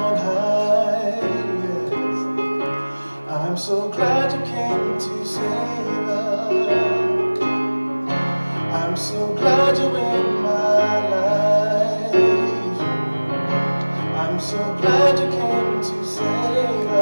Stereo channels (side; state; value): both; inverted; correlation -1.00